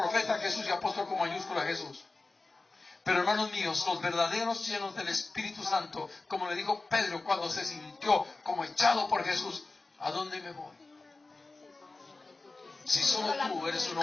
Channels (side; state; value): right; quieter; 3.4 dB